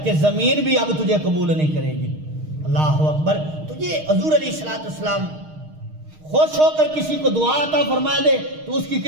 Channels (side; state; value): left; late; 6.5 ms